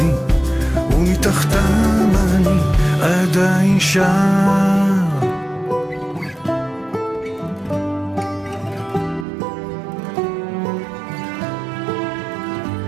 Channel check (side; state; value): left; drops out; at 9.2 s